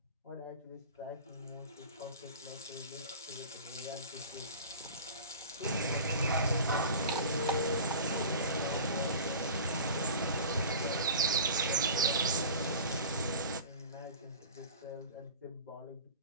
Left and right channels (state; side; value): inverted; both; correlation -0.37